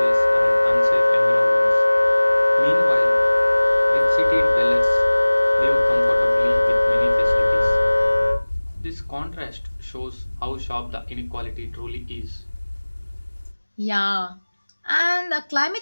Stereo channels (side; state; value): both; inverted; correlation -1.00